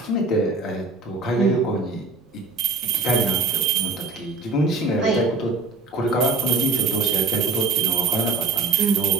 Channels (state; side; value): quieter; left; 3.6 dB